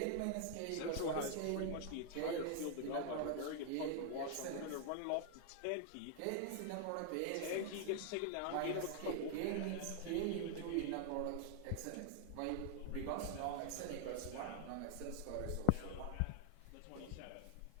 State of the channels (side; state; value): both; different; correlation 0.00